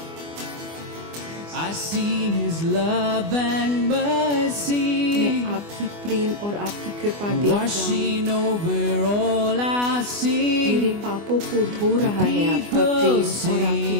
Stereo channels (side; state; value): left; late; 24 ms